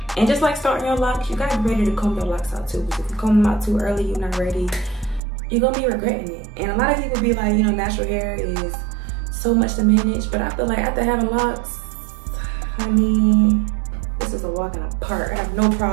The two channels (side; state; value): left; drops out; at 5.2 s